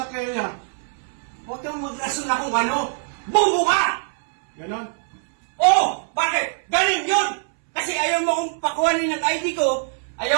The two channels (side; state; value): left; silent; 64 dB below the other